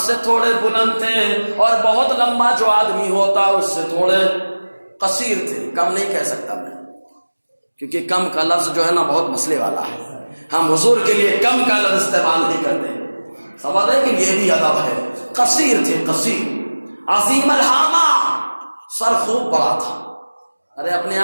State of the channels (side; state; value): both; inverted; correlation -1.00